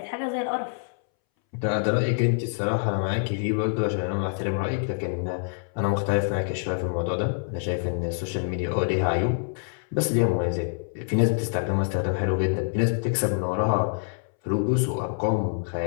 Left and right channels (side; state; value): right; silent; 61 dB below the other